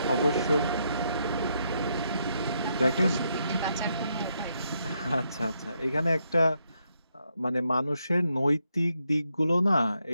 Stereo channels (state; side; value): inverted; both; correlation -0.78